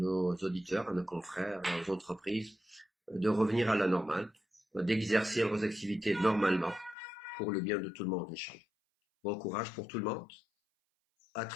auditeurs, à nos confrères, aux entreprises, de revenir à la normale, d'exercer leurs activités normalement pour le bien de tout le monde, Inch'Allah. Bon courage pour tout le monde. À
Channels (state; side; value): drops out; right; at 7.0 s